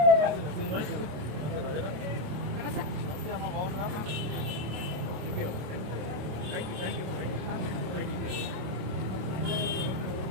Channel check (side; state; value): left; late; 27 ms